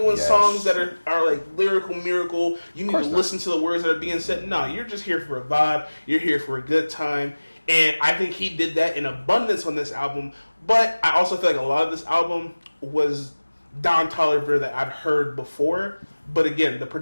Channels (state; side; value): inverted; both; correlation -1.00